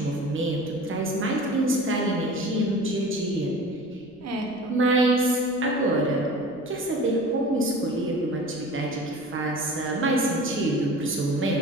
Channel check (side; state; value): left; noise; rumble, 30 dB below the sound